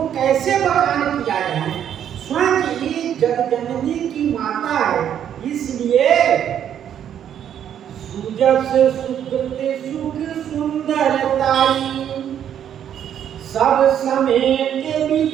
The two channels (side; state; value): left; quieter; 9.6 dB